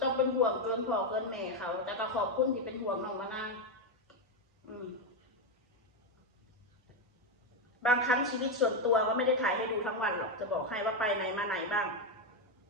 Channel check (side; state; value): both; normal; correlation 0.07